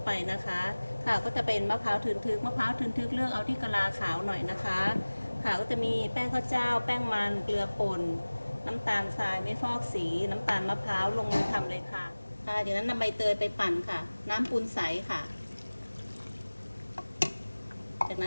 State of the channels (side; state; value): both; inverted; correlation -1.00